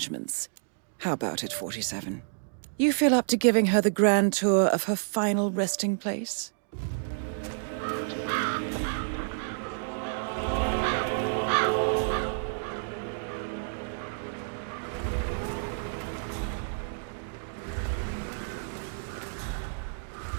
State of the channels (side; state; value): left; silent; digital silence